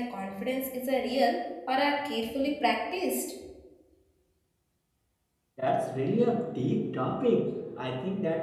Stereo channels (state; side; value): identical; both; correlation 1.00